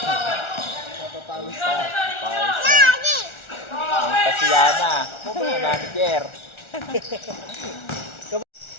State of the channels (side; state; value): right; late; 1.4 ms